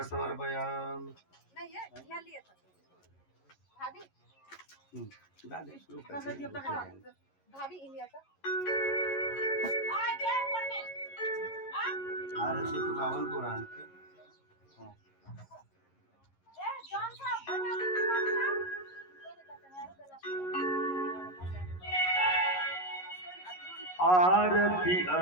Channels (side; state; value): right; late; 11 ms